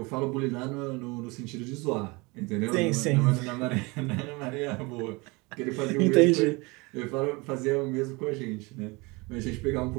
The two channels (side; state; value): left; quieter; 25.9 dB